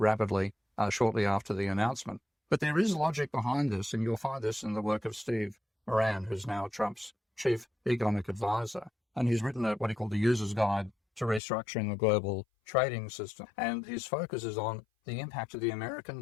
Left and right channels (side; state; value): right; drops out; at 11.4 s